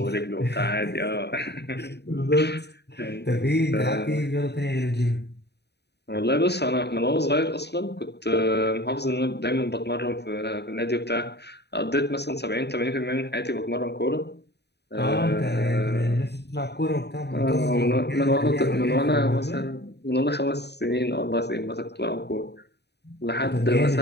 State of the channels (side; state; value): right; late; 0.49 ms